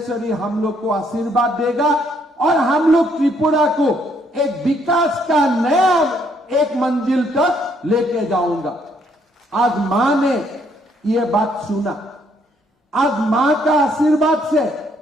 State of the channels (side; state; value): both; normal; correlation 0.69